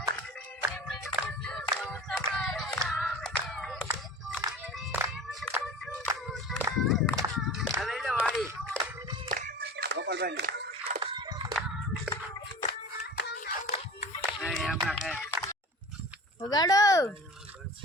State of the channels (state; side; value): normal; both; correlation 0.37